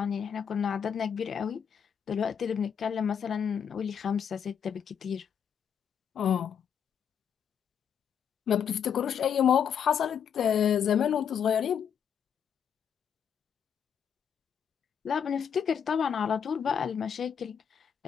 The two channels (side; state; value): right; quieter; 7.8 dB